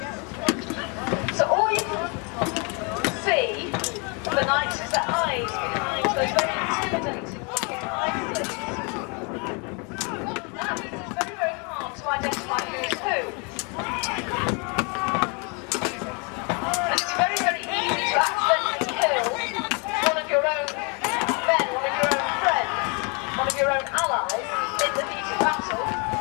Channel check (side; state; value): right; quieter; 33.4 dB